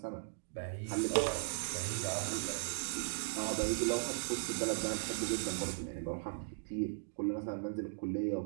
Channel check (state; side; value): silent; left; digital silence